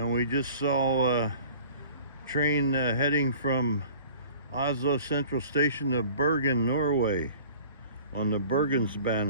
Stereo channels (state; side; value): inverted; both; correlation -0.46